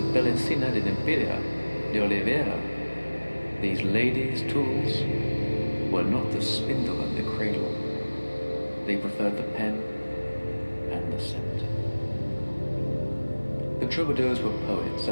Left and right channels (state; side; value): inverted; both; correlation -1.00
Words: Belecina de Nempiria, de Oliveira, these ladies' tools, were not the spindle and the cradle. They preferred the pen and the scimitar. The troubadours were poets,